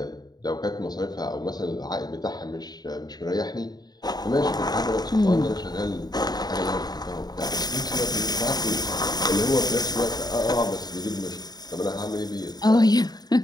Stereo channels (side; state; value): right; late; 0.19 ms